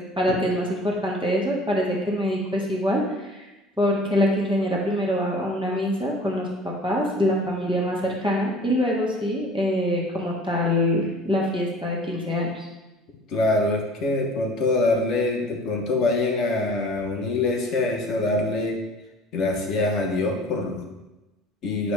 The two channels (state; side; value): normal; both; correlation 0.47